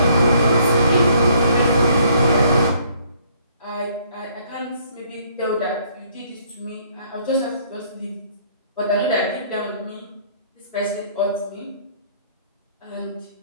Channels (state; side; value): inverted; both; correlation -0.63